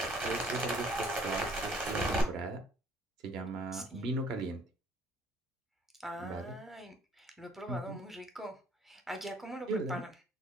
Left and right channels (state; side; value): normal; both; correlation 0.59